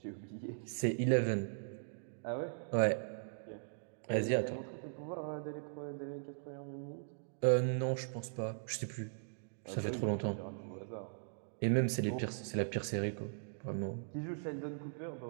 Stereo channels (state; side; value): silent; left; digital silence